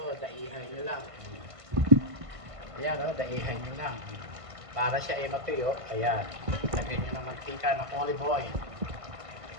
daihan nyo lang. Ayan, oh, daihan nyo lang. Para siya ay matuyo, ayan. Lagyan nyo ng mantika ng olive oil.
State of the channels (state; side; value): late; left; 1.5 ms